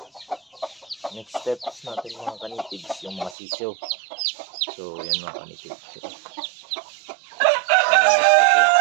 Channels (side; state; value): left; drops out; at 3.4 s